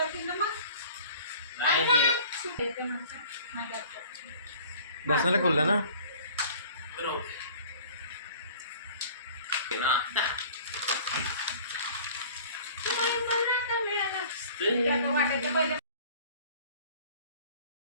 बसणार खुललं ना.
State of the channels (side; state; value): both; inverted; correlation -0.48